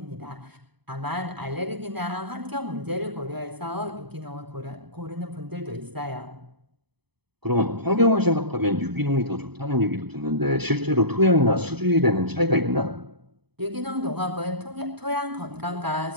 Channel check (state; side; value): late; left; 0.98 ms